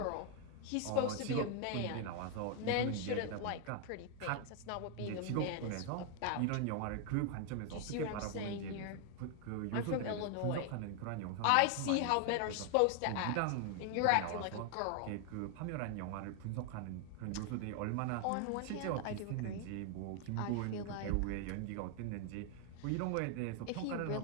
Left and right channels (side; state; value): both; different; correlation 0.00